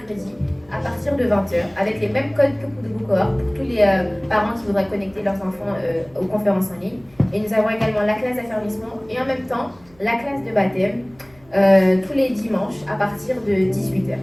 à partir de 20h avec les mêmes codes que pour de cohorte pour tous les parents qui voudraient connecter leurs enfants aux conférences en ligne. Et nous avons également la classe d'affermissement et en même temps la classe de baptême tous les dimanches à partir de 18h.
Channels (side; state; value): right; noise; hum, 29 dB below the sound